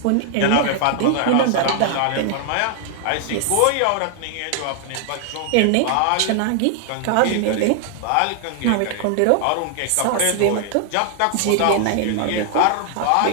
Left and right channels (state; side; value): different; both; correlation 0.00